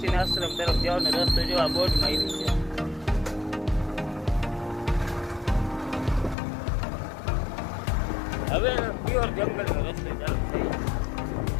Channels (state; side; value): drops out; right; at 6.4 s